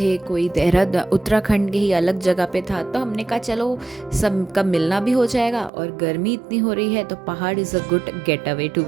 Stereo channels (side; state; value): left; drops out; at 5.7 s